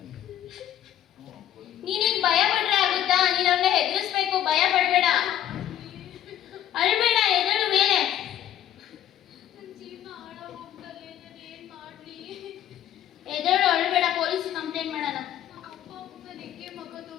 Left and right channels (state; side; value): quieter; right; 11.4 dB